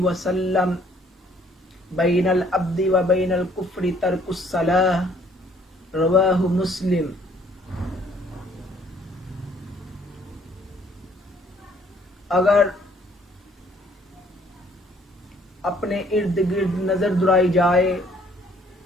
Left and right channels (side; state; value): both; normal; correlation 0.61